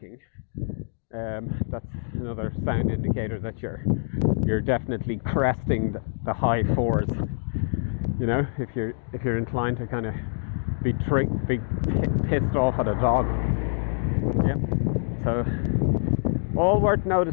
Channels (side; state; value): right; silent; digital silence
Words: that's another sound indicator that you're definitely cresting the high fours. You know, if you're inclined to kind of be pissed off at a dog. Yep. So all worth